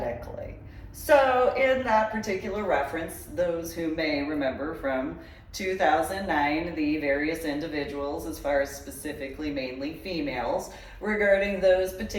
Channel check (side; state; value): both; identical; correlation 1.00